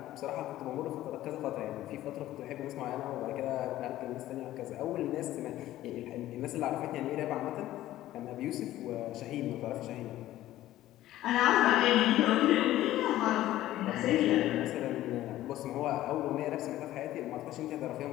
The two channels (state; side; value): quieter; right; 14.5 dB